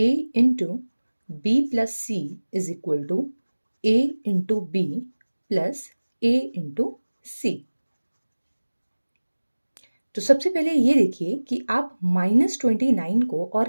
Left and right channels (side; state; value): both; inverted; correlation -1.00